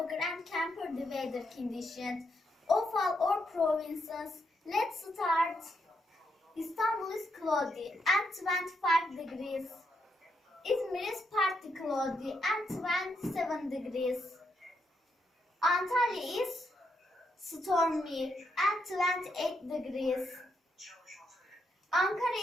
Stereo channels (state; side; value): normal; both; correlation 0.80